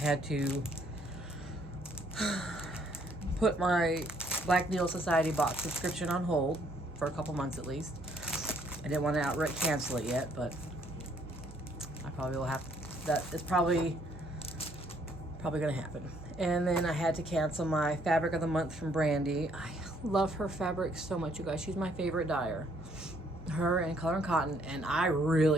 to put my Black Needle Society box subscription on hold for a couple months at least. I didn't want to outright cancel it yet, but I probably will have to. That is probably going to happen. And then I had to cancel my Fabric of the Month from Brandy. I love her fabric so much, you guys. She's my favorite dyer. Her and Color and Cotton, and I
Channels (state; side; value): normal; both; correlation 0.66